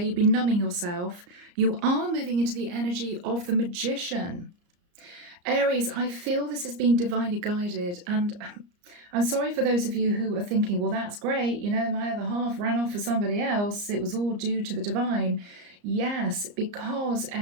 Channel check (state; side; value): late; left; 34 ms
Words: you've been numbing yourself, you are moving into the energy of the Magician. Aries, I feel this has been divinely guided, and I'm sorry for those of you who are thinking, well, that's great, you know, my other half ran off for somebody else, it was all due to the divine. Yes, because